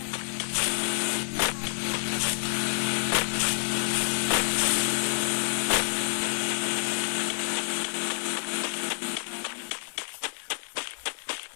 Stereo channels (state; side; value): silent; right; 59 dB below the other